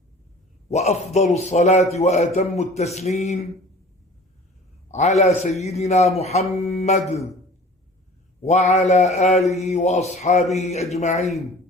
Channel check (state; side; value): normal; both; correlation 0.45